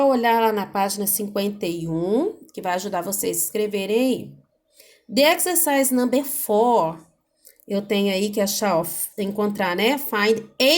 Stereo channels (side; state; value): both; identical; correlation 1.00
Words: olhar lá na página 51, que vai ajudar vocês a escreverem aí. The exercise number 4, eu tenho aí que achar, ó, encontrar, né? Find